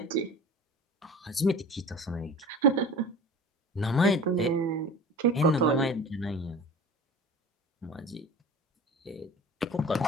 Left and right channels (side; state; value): both; normal; correlation 0.39